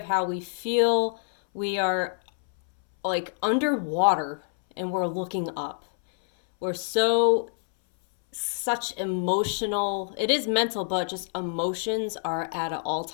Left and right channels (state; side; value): silent; right; 61 dB below the other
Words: how we feel we are like underwater and we're looking up. We're such emotional, it is mental, but just emotions are at an